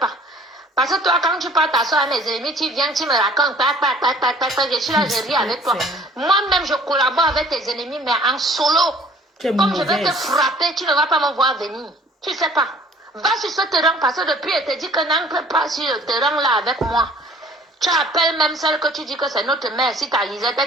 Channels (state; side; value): normal; both; correlation 0.53